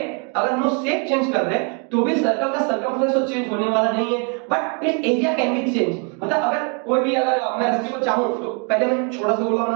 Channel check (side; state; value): left; quieter; 37.3 dB